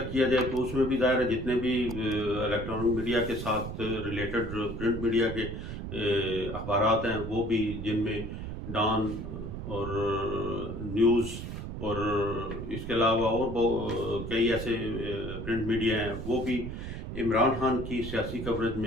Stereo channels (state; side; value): noise; right; rumble, 7 dB below the sound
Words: کیا جائے تو اس میں بھی ظاہر ہے جتنے بھی الیکٹرانک میڈیا کے ساتھ ریلیٹڈ پرنٹ میڈیا کے اخبارات ہیں وہ بھی، جن میں ڈان اور نیوز اور اس کے علاوہ اور کئی ایسے پرنٹ میڈیا ہیں، وہ بھی عمران خان کی سیاسی کوریج